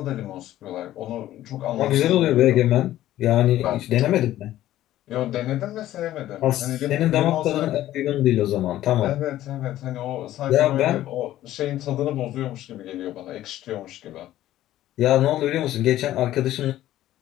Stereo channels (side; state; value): right; quieter; 13.8 dB